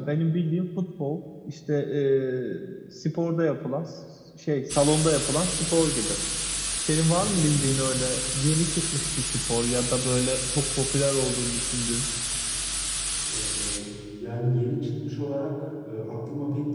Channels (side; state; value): both; identical; correlation 1.00